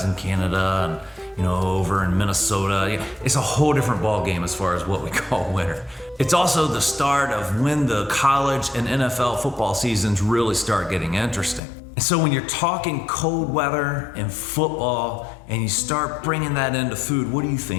in Canada and you know, over in Minnesota, it's a whole different ball game as far as what we call winter. It's also the start of when the college and NFL football seasons really start getting interesting. And so when you're talking cold weather and football and you start bringing that into food, what do you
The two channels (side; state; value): right; drops out; at 11.6 s